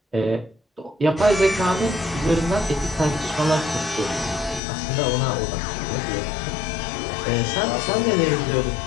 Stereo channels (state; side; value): drops out; right; at 4.6 s